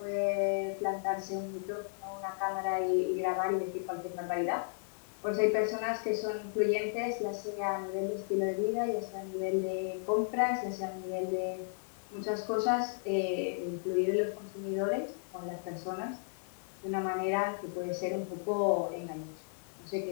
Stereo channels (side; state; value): right; silent; digital silence